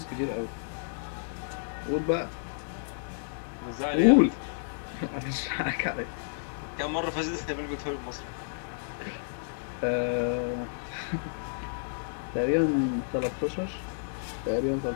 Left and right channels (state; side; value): silent; right; digital silence